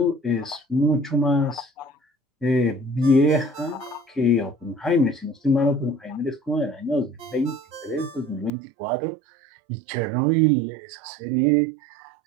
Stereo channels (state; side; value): drops out; left; at 8.5 s